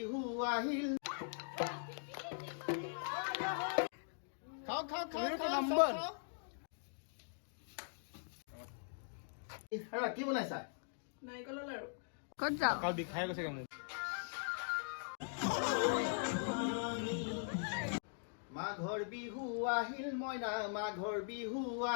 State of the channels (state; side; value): silent; right; digital silence